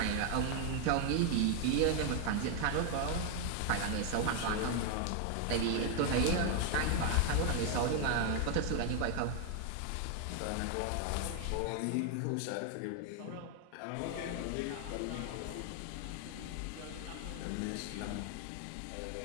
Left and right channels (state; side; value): different; both; correlation 0.00